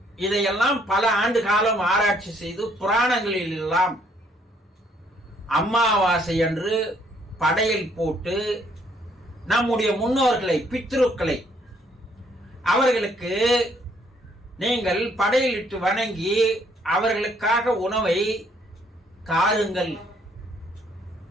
இதையெல்லாம் பல ஆண்டு காலம் ஆராய்ச்சி செய்து புராணங்களில் எல்லாம் அமாவாசை அன்று படையல் போட்டு நம்முடைய முன்னோர்களை, பித்ருக்களை, அவர்களுக்கு நீங்கள் படையலிட்டு வணங்கி அவர்களுக்காக உணவை தாருங்கள்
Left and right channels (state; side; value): normal; both; correlation 0.66